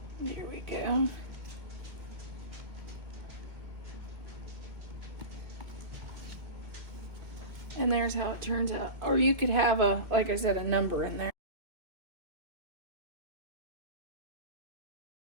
There we go. And there's how it turns out. Or you could have like I said, a number in there.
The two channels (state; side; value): late; left; 2.0 ms